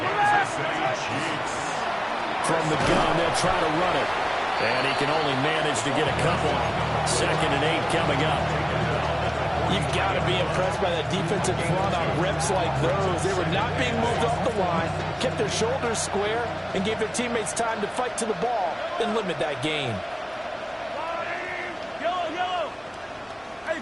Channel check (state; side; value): identical; both; correlation 1.00